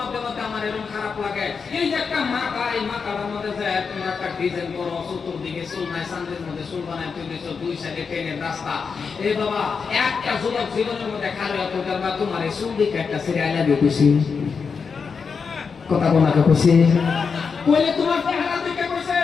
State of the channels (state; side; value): quieter; right; 5.6 dB